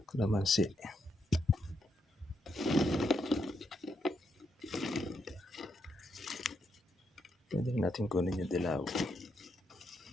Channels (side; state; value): both; normal; correlation 0.79